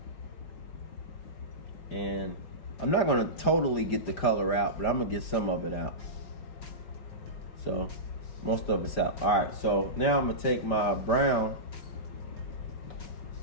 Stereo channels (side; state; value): right; late; 5.1 ms